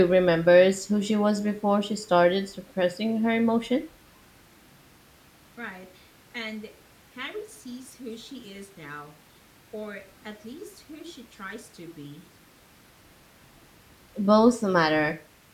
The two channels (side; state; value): both; identical; correlation 1.00